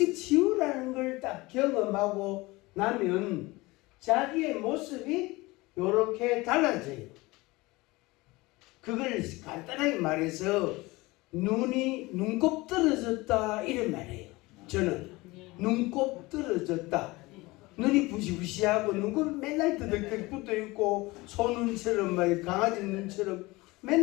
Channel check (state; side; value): quieter; right; 21.9 dB